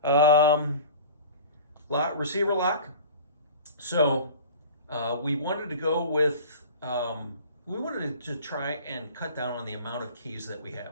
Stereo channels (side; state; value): both; inverted; correlation -0.40